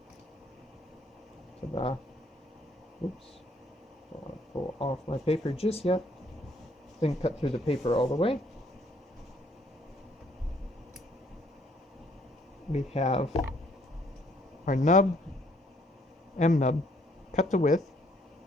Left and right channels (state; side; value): normal; both; correlation 0.65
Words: ta-da. Oops. Don't want to pull off my paper just yet. Didn't cut through the paper all the way. We have our nub, m-nub, cut to width.